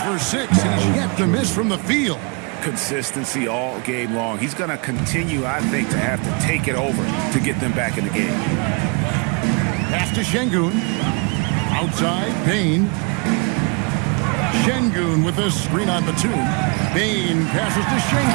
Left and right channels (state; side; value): quieter; left; 33.3 dB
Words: for 6. He's yet to miss from the field. Consistency all game long. He's going to continue, I think, to have to take it over to get them back in the game. Pass to Şengün. Outside, Payne. Şengün with a screen on Batum. Payne passes to